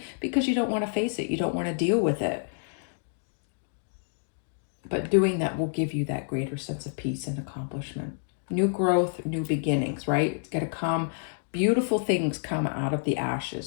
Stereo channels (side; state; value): right; silent; digital silence